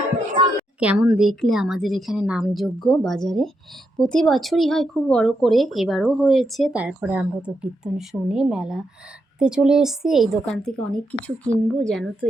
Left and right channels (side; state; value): both; normal; correlation 0.82